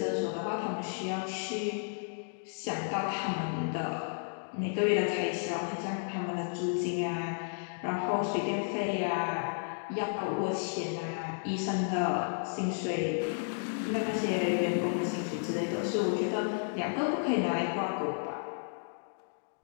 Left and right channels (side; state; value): right; silent; digital silence